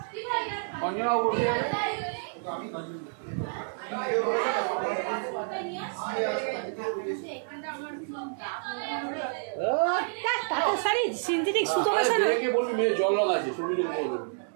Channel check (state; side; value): silent; left; digital silence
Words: অঞ্জনা বলছে তাঁতের শাড়ি সিনথেটিক সুতো মেশানো, বলবি মেয়ে জল লাগাচ্ছে শুরু বলবো